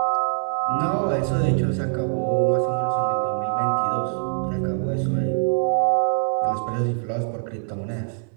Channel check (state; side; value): silent; left; 63 dB below the other